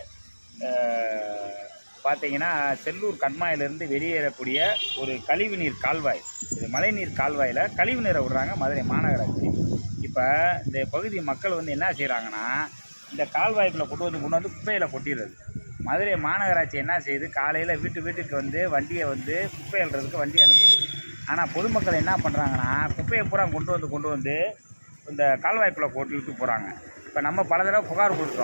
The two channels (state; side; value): inverted; both; correlation -1.00